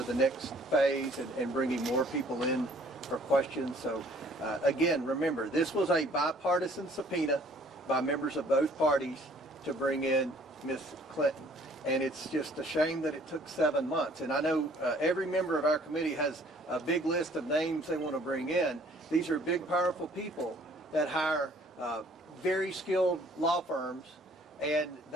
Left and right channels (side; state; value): both; normal; correlation 0.57